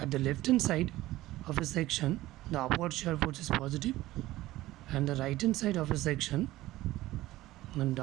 at the left hand side of a section, the upward shear force is positive, and the right hand side of a section, the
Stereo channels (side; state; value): left; quieter; 16.7 dB